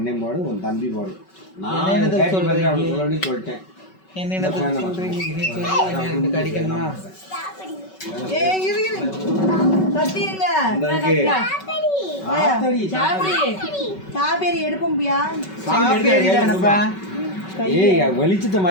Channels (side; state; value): right; late; 5.3 ms